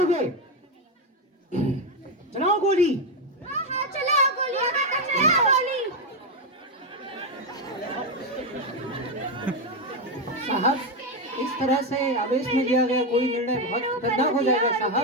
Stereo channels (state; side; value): normal; both; correlation 0.08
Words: चलाओ गोली। हाँ हाँ, चलाओ गोली, चलाओ गोली। साहब, इस तरह से आवेश में लिया गया कोई निर्णय बहुत खतरनाक हो जाएगा साहब।